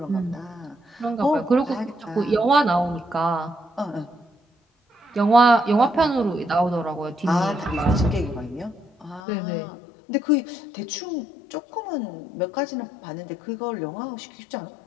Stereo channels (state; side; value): drops out; right; at 9.2 s